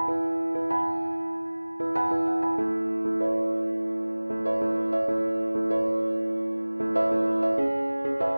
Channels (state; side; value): inverted; both; correlation -1.00